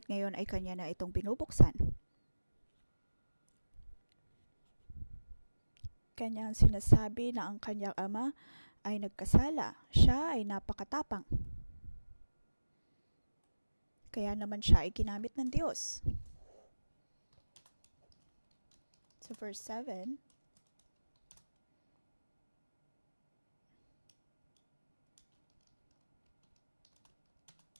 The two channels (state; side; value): inverted; both; correlation -1.00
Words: ngayon ay kanya na itong binubuksan. Kanyang sinasabi na ang kanyang ama ay nagkasala. Siya ay napakatapang. Kaya naman siya ay ginamit ng Diyos. So verse 7,